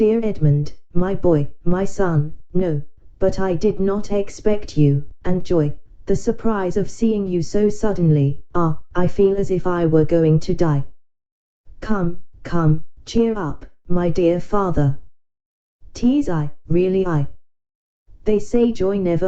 Edmund, my boy, my son, no, but I did not expect you, and joy, the surprise of seeing you so suddenly, I feel as if I were going to die. Come, come, cheer up, my dear father. 'Tis I, really I. They say joy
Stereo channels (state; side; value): identical; both; correlation 1.00